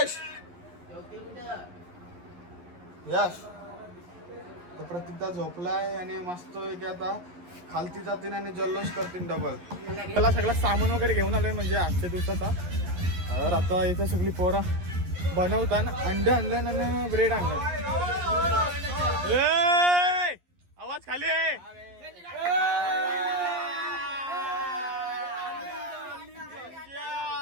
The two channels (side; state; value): left; late; 11 ms